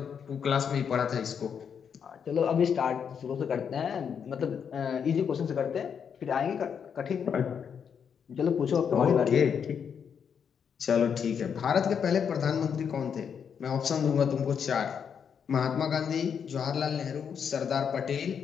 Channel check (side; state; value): right; quieter; 7.3 dB